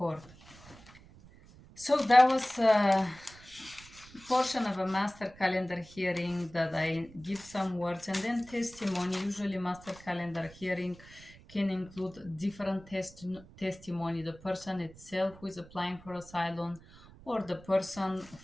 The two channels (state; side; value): noise; right; rumble, 21 dB below the sound